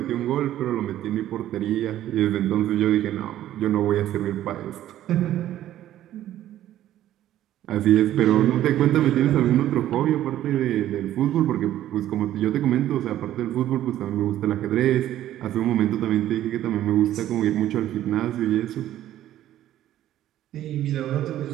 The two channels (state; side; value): quieter; left; 12.7 dB